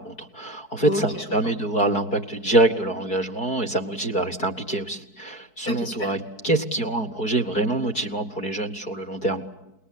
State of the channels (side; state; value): right; late; 4.6 ms